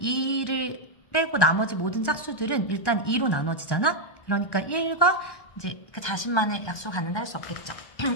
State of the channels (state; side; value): late; right; 1.1 ms